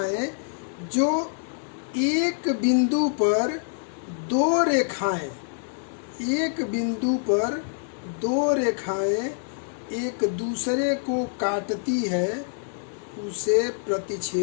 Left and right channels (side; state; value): right; silent; 57 dB below the other